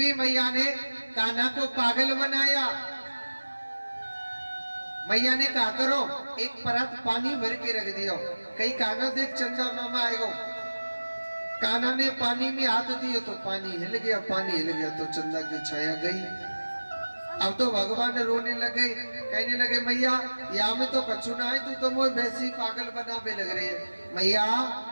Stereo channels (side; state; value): both; inverted; correlation -1.00